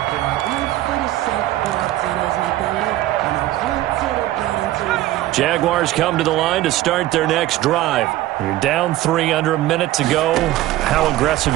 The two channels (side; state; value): left; quieter; 15.4 dB